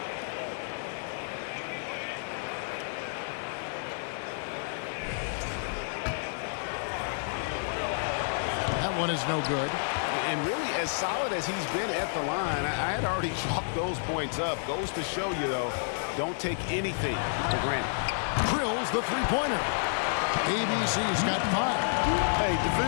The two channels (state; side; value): silent; right; 58 dB below the other